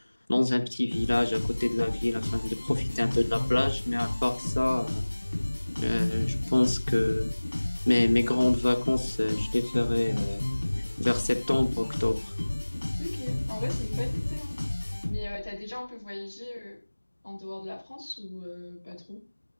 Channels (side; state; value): both; inverted; correlation -1.00